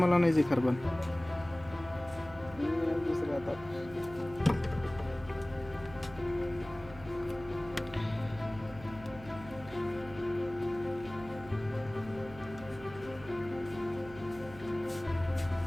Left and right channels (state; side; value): noise; right; hum, 17 dB below the sound